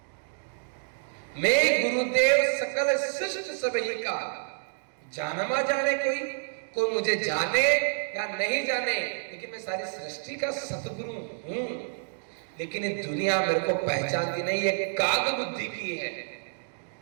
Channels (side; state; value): left; silent; digital silence